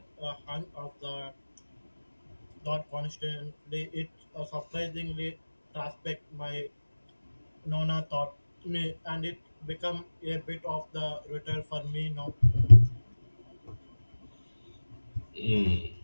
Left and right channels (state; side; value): inverted; both; correlation -1.00